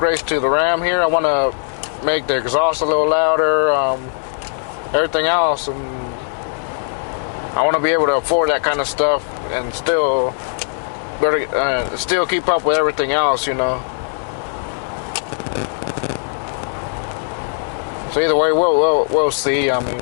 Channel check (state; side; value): silent; right; 63 dB below the other